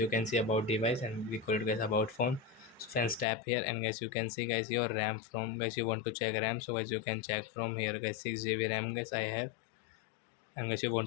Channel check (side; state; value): right; drops out; at 3.2 s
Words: can see about device and we call it guys about phone. So friends tap here and guys you can see guys your RAM. From guys you want to check RAM, so guys you can check from here guys 6 GB RAM guys I have. And guys you